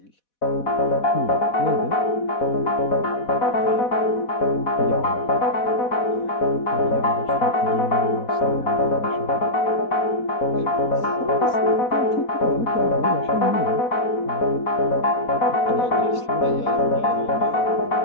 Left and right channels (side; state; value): right; late; 4.1 ms